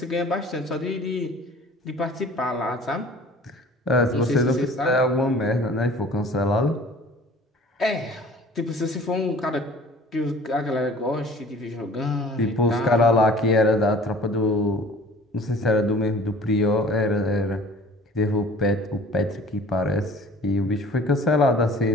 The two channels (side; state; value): both; normal; correlation 0.47